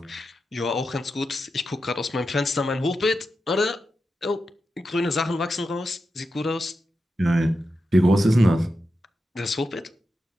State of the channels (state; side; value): normal; both; correlation 0.89